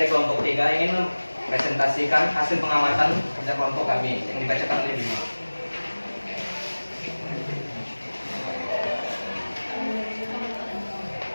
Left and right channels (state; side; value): inverted; both; correlation -1.00